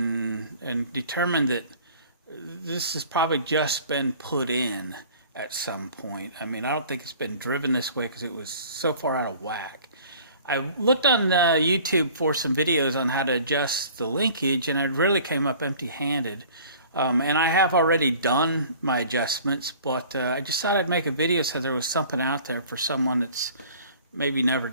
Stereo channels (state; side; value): inverted; both; correlation -0.49